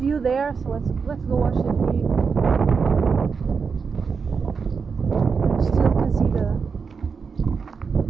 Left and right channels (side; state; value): left; quieter; 5.5 dB